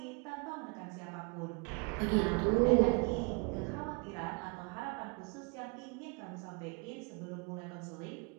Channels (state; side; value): quieter; left; 31.7 dB